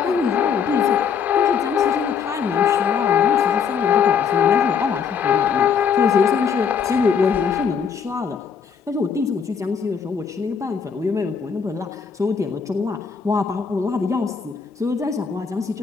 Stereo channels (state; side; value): quieter; right; 6.7 dB